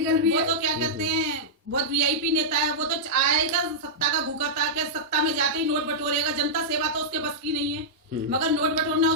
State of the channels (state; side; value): normal; both; correlation -0.10